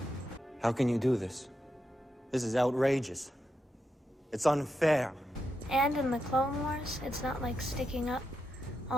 How can you do this? This is outrageous. It's unfair. And in the Clone Wars, it's not like sticking up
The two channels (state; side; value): normal; both; correlation 0.85